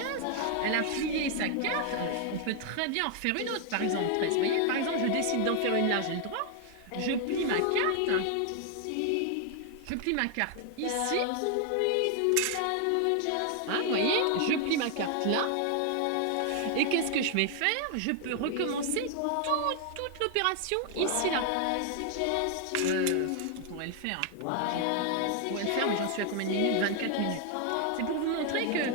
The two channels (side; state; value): both; different; correlation 0.00